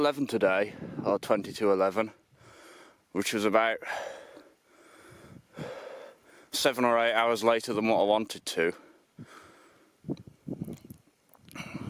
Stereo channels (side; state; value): both; identical; correlation 1.00